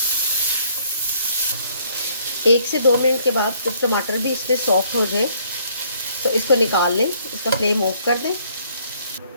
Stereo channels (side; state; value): both; inverted; correlation -0.64